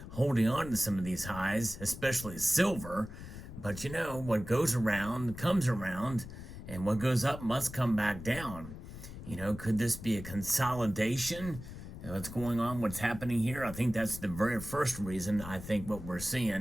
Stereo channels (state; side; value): noise; left; rumble, 12 dB below the sound